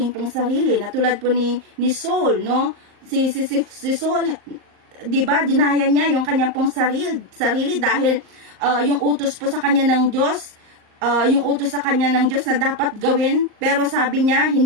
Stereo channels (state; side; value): late; left; 38 ms